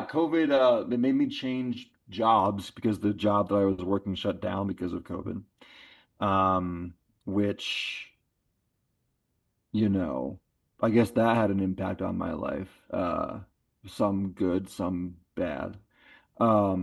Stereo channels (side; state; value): both; identical; correlation 1.00